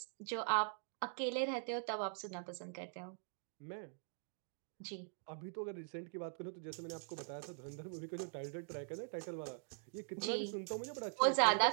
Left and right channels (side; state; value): left; silent; digital silence